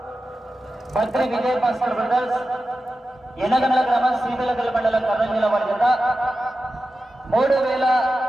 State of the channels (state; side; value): normal; both; correlation 0.92